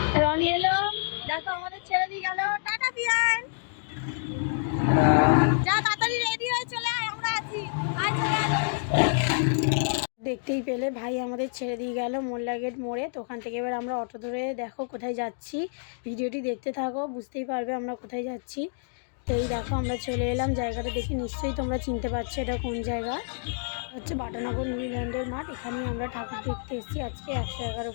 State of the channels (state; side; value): silent; right; digital silence